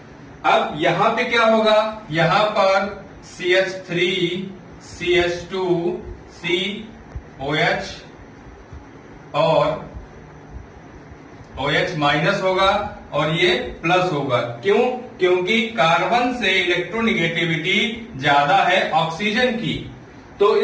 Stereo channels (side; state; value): both; identical; correlation 1.00